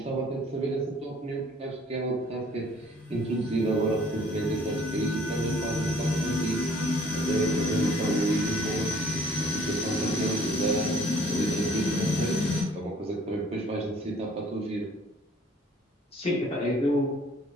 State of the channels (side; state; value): both; normal; correlation 0.57